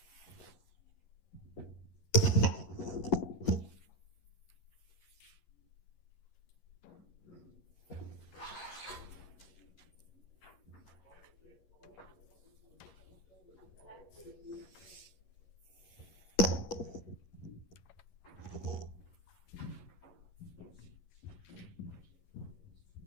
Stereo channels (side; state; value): right; late; 11 ms